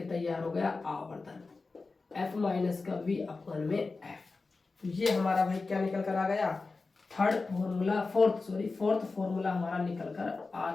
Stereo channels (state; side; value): quieter; right; 3.9 dB